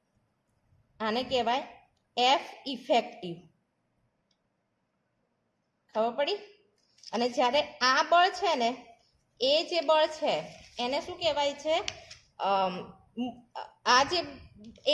આને કહેવાય એફ ઇફેક્ટિવ. ખબર પડી? અને જ્યારે આ બળ છે ને એ જે બળ છે એને શું કહેવાય છે? આ જે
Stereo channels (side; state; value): both; identical; correlation 1.00